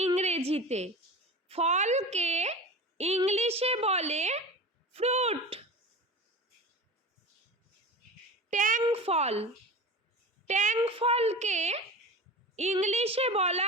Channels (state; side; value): normal; both; correlation 0.32